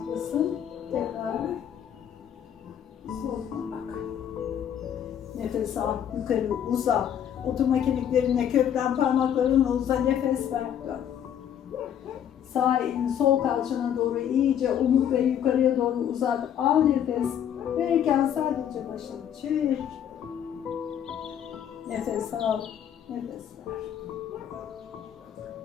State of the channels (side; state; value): right; quieter; 9.5 dB